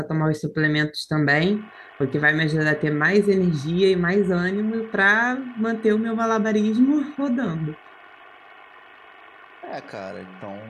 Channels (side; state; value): both; identical; correlation 1.00